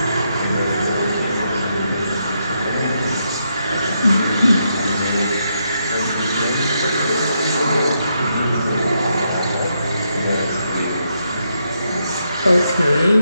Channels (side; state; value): both; inverted; correlation -0.80